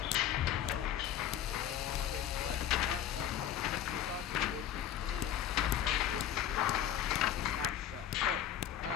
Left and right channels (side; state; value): right; quieter; 10.6 dB